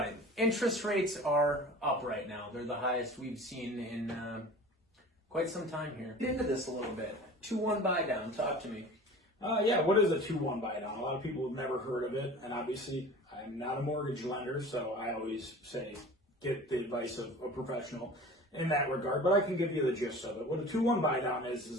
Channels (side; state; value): both; normal; correlation 0.40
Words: it. Interest rates are up right now. They're the highest we've seen in quite some time here. Get into this a little bit. 2-1 buy down. Talk to me. Yeah, what is a 2-1 buy down? A lot of people have never heard of it, and obviously I'm not a mortgage lender, so I always say get the advice of a professional in that regard, but I can give you the gist of it. What a 2-1 buy down is